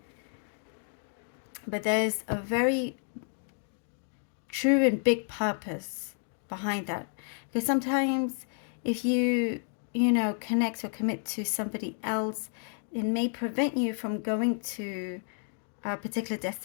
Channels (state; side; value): silent; right; 57 dB below the other